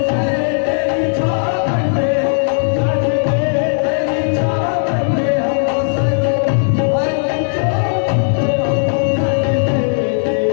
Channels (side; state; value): right; silent; digital silence